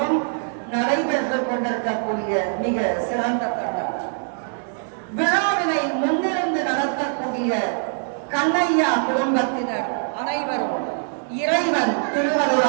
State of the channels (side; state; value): left; silent; digital silence